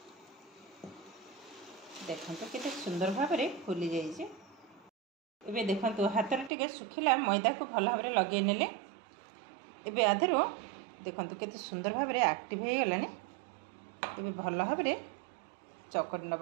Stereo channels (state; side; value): drops out; left; at 6.5 s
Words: देखंतु केते सुंदर भाव में फुली जाइए। एबे देखंतु हाथ रे टिके सुखिला मैदा को भल भाव में लगे नेले एबे आधरो देखंतु केते सुंदर भाव में एक्टिव हो गलानी। एबे भल भाव में चकट